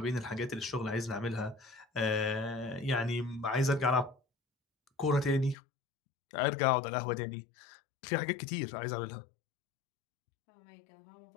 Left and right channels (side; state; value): right; drops out; at 5.6 s